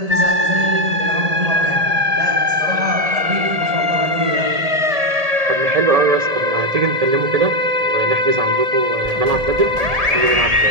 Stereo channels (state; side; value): late; left; 1.7 ms